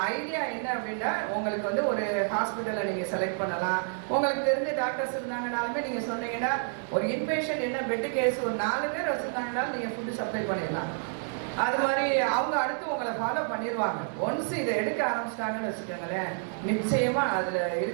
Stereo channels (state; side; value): silent; left; 58 dB below the other